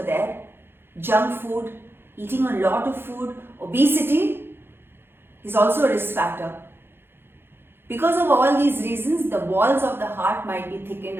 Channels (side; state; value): left; late; 0.11 ms